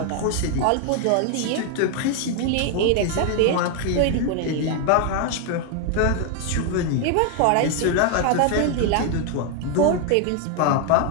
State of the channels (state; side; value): different; both; correlation 0.00